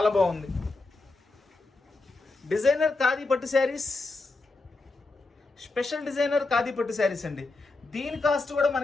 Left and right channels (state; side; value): quieter; right; 3.4 dB